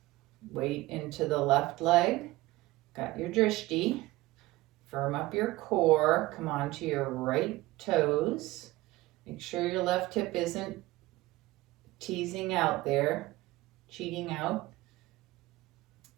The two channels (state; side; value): quieter; left; 18.9 dB